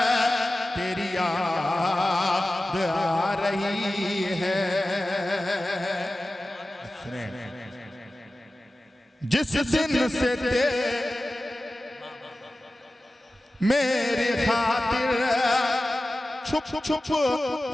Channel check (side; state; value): both; normal; correlation 0.95